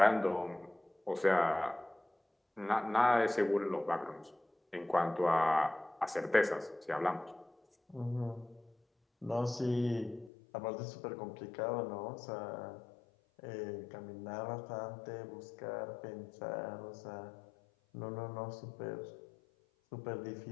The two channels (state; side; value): drops out; right; at 10.3 s